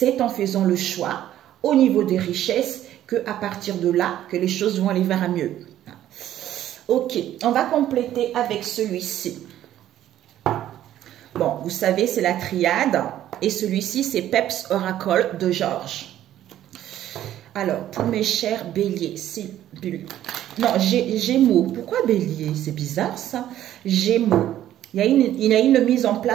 en faisant le choix au niveau des richesses qu'à partir de là, que les choses vont aller vers un mieux. Ok, on va compléter avec celui-ci. Bon, vous savez, c'est la triade et celui-ci, c'est Peps Oracle de Georges. Alors, pour mes chers béliers, c'est non, Gémeaux. Pourquoi bélier? C'est bizarre ça. Gémeaux. Il y a une mise en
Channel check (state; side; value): quieter; left; 12.3 dB